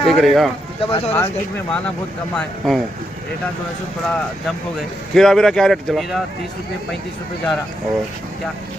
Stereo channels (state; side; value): normal; both; correlation 0.82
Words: ठीक रहेगा। मार्केट में माना बहुत कम है, रेटा जो है सो थोड़ा जंप हो गए। खीरा बीरा क्या रेट चला? खीरा 30 रुपये 35 रुपये जा रहा। और क्या